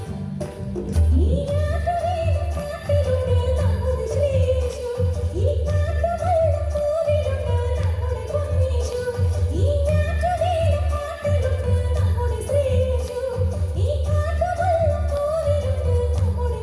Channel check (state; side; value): identical; both; correlation 1.00